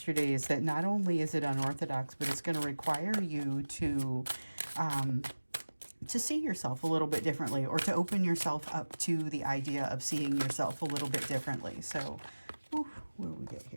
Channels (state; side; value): inverted; both; correlation -1.00